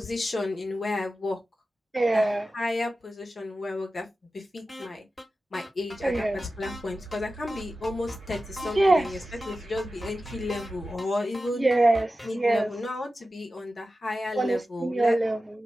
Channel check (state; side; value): normal; both; correlation 0.93